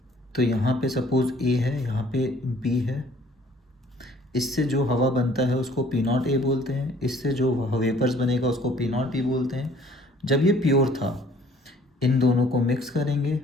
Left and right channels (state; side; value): normal; both; correlation 0.56